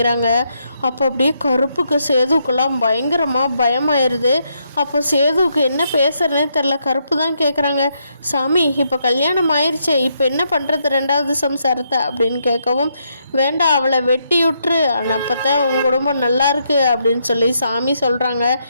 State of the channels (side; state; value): both; inverted; correlation -0.78